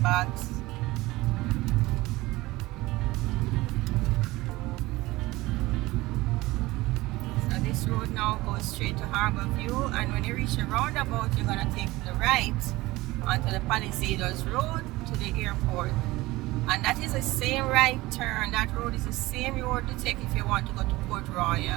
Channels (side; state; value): left; quieter; 19.6 dB